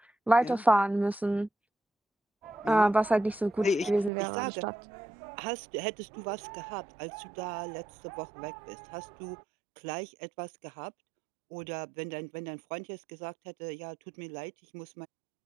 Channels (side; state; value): left; drops out; at 4.1 s